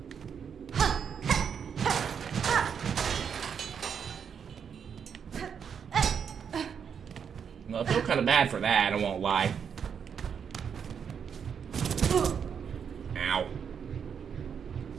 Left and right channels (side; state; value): left; quieter; 7.2 dB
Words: Well, I feel kind of bad for that, I won't lie. Ow.